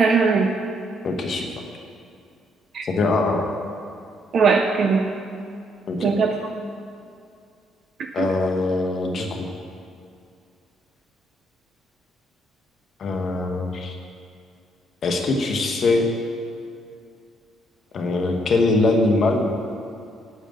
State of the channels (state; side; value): normal; both; correlation 0.72